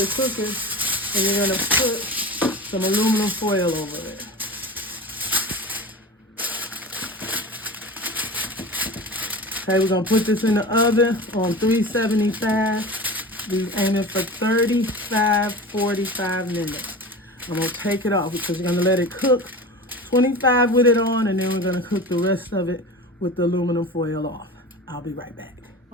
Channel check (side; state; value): both; normal; correlation 0.32